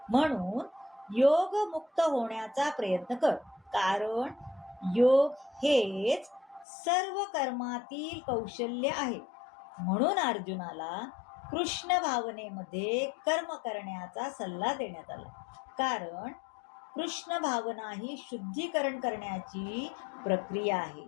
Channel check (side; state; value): right; drops out; at 6.7 s